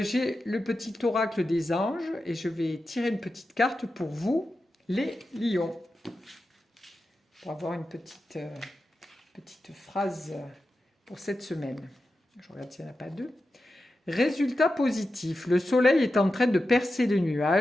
le petit oracle des anges et je vais tirer une petite carte pour vous, les lions, pour avoir une petite phrase pour cette semaine. Je regarde s'il n'y en a pas deux. Résultat positif, le soleil est en train de percer les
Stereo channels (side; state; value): both; normal; correlation 0.91